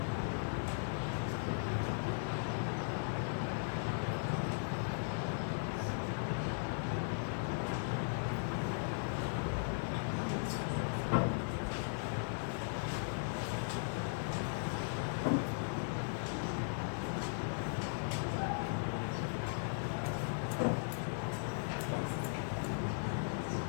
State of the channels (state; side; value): silent; right; 53 dB below the other